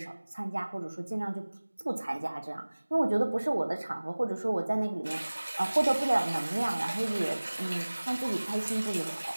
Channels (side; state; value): both; inverted; correlation -1.00